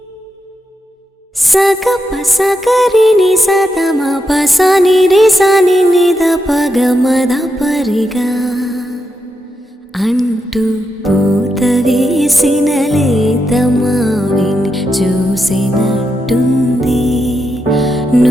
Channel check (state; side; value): normal; both; correlation 0.84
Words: సగప సగరిని సతమ పసని రిసని నిద పగమద పరిగా అంటూ పూత వేసిన లేత మావిని చూసినట్టుంది